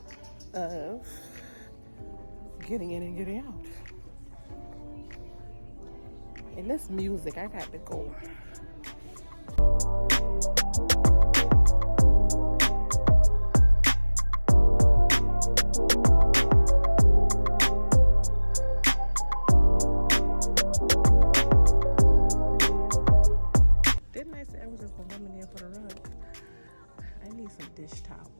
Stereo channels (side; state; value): both; inverted; correlation -1.00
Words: of getting in and getting out. And this music, I got to go. Didn't I say I was just the woman there for the rug? I need some dish